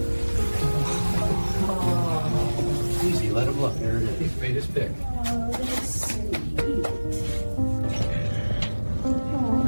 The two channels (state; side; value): inverted; both; correlation -1.00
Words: Easy, let him look. There it is. He's made his pick.